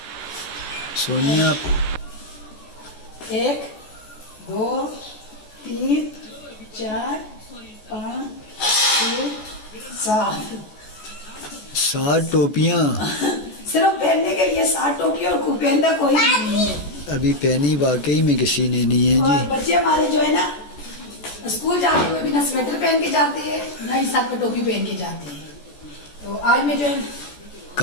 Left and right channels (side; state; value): right; late; 14 ms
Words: سونیا 1 2 3 4 5 6 7 ٹوپیاں صرف پہننے کے لیے 7 ٹوپیاں, اور خوب پہنتا کوئی نہیں ہے. ابھی پہنی واقعی میں کسی نے نہیں ہے اور جی. بچے ہمارے جو ہے نا اسکول جاتے ہوئے بھی نہ سویٹر پہن کے جاتے ہیں, نہ ہی ساتھ میں ٹوپی پہن کے جاتے ہیں. تو آج میں جو ہے